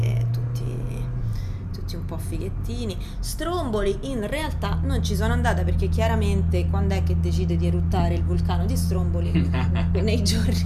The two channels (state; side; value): identical; both; correlation 1.00